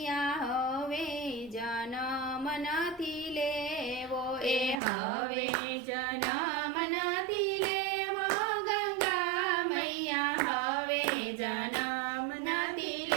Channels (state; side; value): drops out; left; at 4.8 s